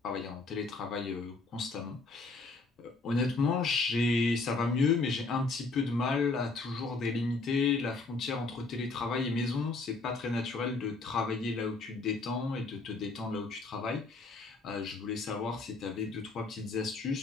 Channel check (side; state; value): right; quieter; 3.7 dB